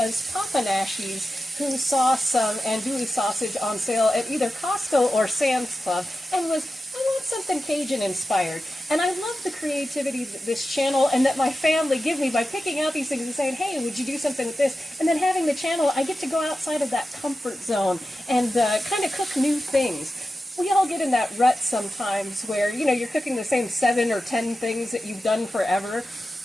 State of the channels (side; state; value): both; normal; correlation 0.92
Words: Papa Nashies who saw some andouille sausage on sale at either Costco or Sam's Club and was, I want something Cajun inspired. And I love the creativity that this channel and that my family give me by picking out these things and saying, hey, would you do something with this? And then having the channel, I get to go outside of that comfort zone and kind of cook new things. We all get in that rut sometimes where, you're cooking the same 7 or 10 things that you've done forever.